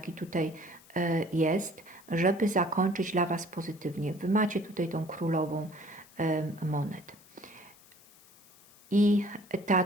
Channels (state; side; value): noise; left; hiss, 25 dB below the sound